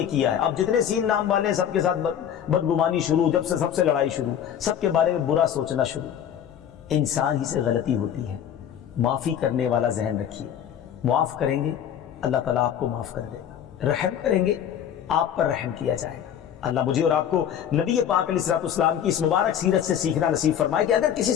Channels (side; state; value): right; quieter; 9.4 dB